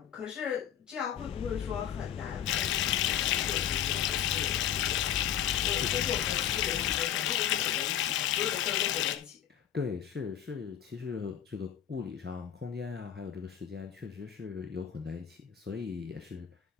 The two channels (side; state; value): right; quieter; 10.1 dB